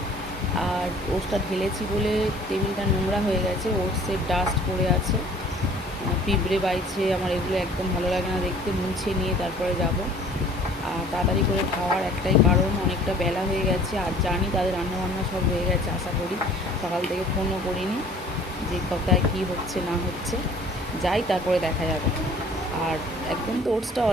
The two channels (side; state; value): both; normal; correlation 0.52